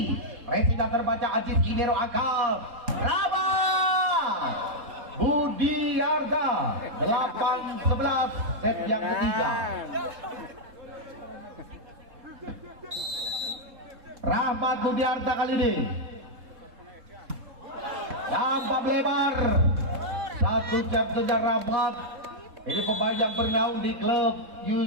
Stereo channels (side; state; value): left; late; 3.7 ms